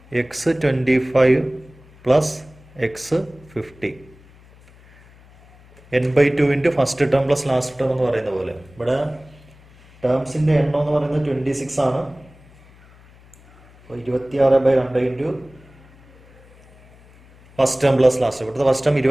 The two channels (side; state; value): left; noise; hum, 26 dB below the sound